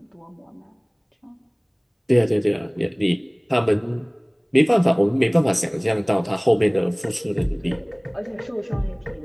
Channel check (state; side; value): identical; both; correlation 1.00